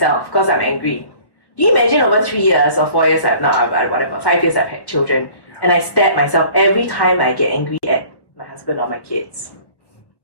because I'm angry. Do you imagine over 3 years or 4 years, 5 years I've had children, And I stab myself every time I get angry at my husband or my kids.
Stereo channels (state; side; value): late; right; 1.1 ms